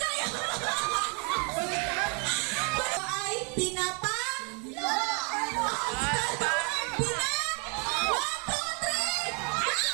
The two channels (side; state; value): left; quieter; 35.7 dB